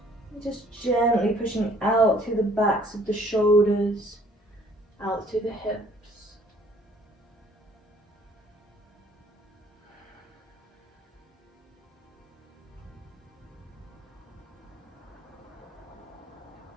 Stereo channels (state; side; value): normal; both; correlation 0.58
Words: Just gently pushing out through the backs of the shoulders, out through the hips.